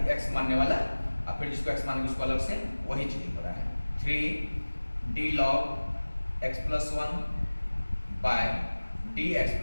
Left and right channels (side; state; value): both; inverted; correlation -1.00